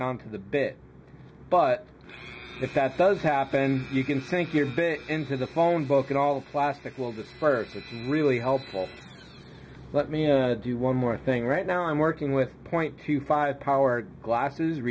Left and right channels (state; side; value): identical; both; correlation 1.00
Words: the bit. But if that does happen, you can sink your bit into the phone book and all the plastic will disperse. It's really helpful. Let me do one more thing. Right now I'm working with 0.25 power glasses,